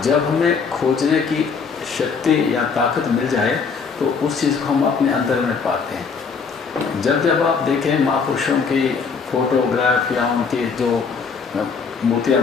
जब हमें खोजने की शक्ति या ताकत मिल जाए तो उस चीज़ को हम अपने अंदर में पाते हैं। जब जब आप देखें महापुरुषों की फोटोग्राफ या उनकी जो मूर्तियाँ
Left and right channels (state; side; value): quieter; right; 5.4 dB